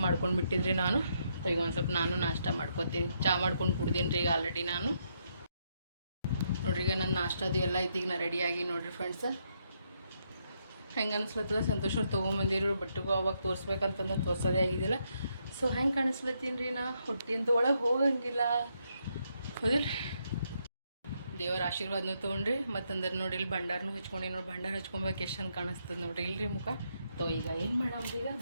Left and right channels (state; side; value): inverted; both; correlation -0.77